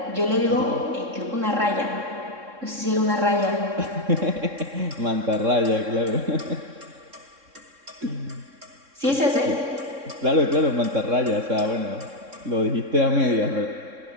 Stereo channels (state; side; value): late; left; 3.6 ms